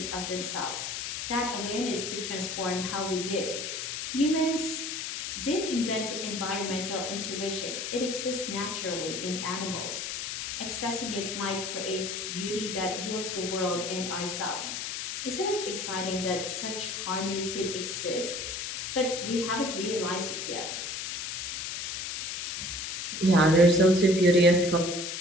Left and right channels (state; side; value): noise; left; hiss, 4 dB below the sound